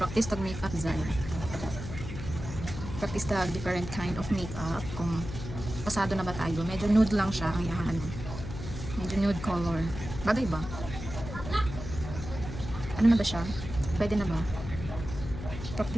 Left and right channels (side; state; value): left; noise; hum, 8 dB below the sound